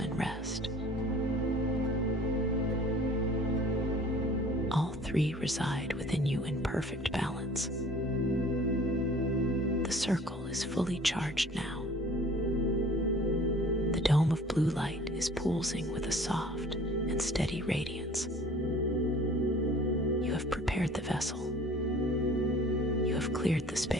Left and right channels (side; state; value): both; normal; correlation 0.49